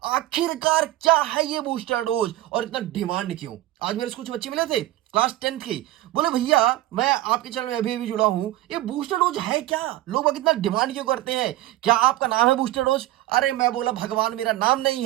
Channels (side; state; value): left; quieter; 15.6 dB